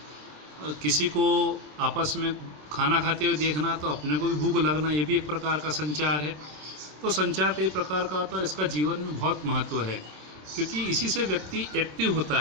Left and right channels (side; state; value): left; late; 27 ms